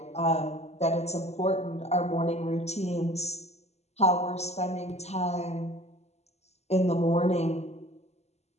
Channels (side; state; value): right; late; 0.31 ms